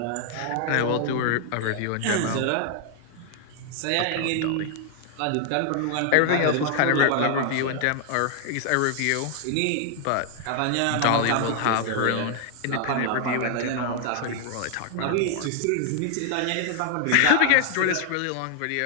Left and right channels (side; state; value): both; different; correlation 0.00